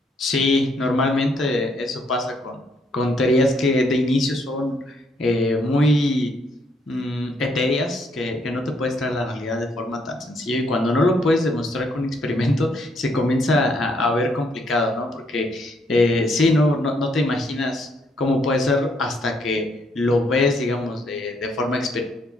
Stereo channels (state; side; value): normal; both; correlation 0.71